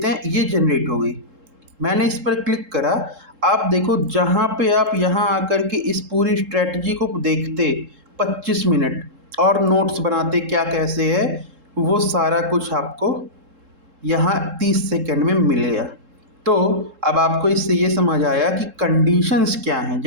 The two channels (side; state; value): left; late; 3.7 ms